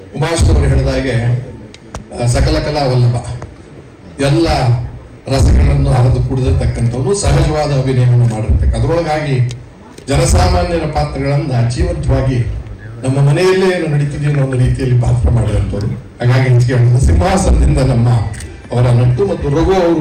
ಉಮಾಶ್ವರು ಹೇಳಿದ ಹಾಗೆ ಸಕಲ ಕಲಾ ವಲ್ಲಭ ಎಲ್ಲ ರಸಗಳನ್ನು ಹರಿದು ಕುಡಿದಿರ್ತಕ್ಕಂಥವ್ರು ಸಹಜವಾದ ಅಭಿನಯವನ್ನು ಮಾಡಿರ್ತಕ್ಕ ಅದರೊಳಗಾಗಿ ಜನಸಾಮಾನ್ಯರ ಪಾತ್ರಗಳನ್ನ ಜೀವಂತವಾಗಿ ನಮ್ಮ ಮನೆಯಲ್ಲೇ ಏನು ನಡೀತಿದೆ ಅನ್ನೋ ಒಂದು ರೀತಿಯಲ್ಲಿ ಪಾತ್ರ ಮಾಡಿದಂಥವ್ರು. ಹಾಗಾಗಿ ಹೆಚ್ಚಿಗೆ ಸಿಂಹಾಸನದಿಂದ ನಮ್ಮ ಅವರ ನಟ್ಟು ಮತ್ತು ರಘು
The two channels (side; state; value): both; identical; correlation 1.00